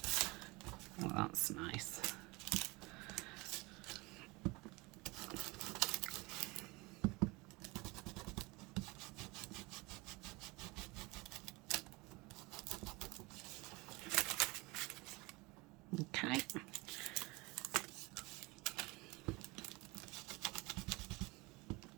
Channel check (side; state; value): left; quieter; 24.7 dB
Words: Oh, that's nice. Okay.